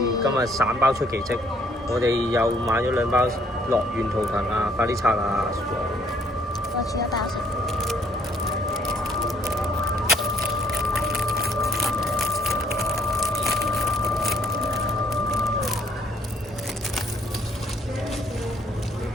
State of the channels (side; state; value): both; normal; correlation 0.64